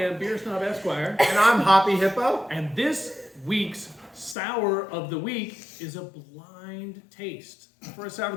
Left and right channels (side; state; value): right; drops out; at 4.4 s